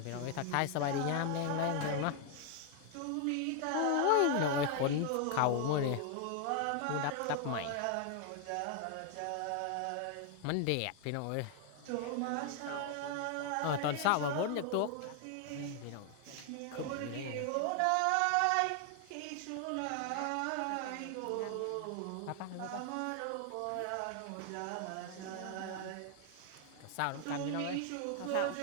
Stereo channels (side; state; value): both; different; correlation 0.00